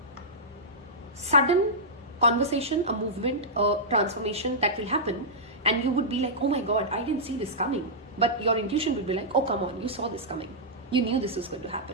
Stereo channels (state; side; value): normal; both; correlation -0.12